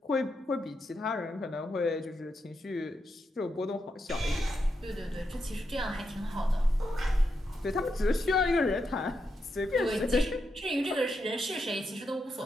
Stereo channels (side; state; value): both; normal; correlation 0.84